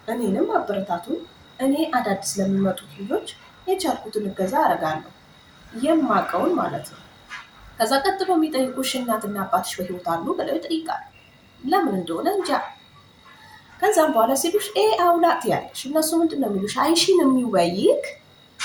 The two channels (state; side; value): identical; both; correlation 1.00